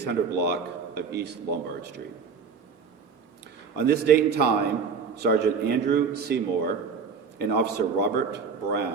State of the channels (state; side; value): quieter; left; 5.6 dB